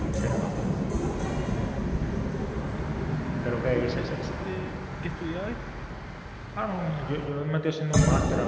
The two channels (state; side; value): identical; both; correlation 1.00